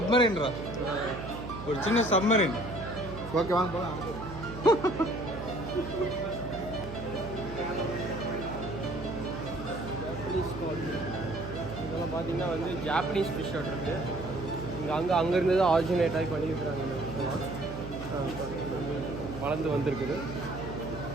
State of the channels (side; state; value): right; noise; hum, 11 dB below the sound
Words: ஒரு சின்ன சப்மரீன். ஓகே வாங்க போகலாம். இதெல்லாம் பார்த்தீங்கன்னா வந்து ஜாப்பனீஸ் ஃபிஷ் இருக்கு. அங்கே இருந்து தான் ஆரிஜினேட் ஆகி பண்ணியிருக்கிறாங்க. வளர்ந்து வந்திருக்குது.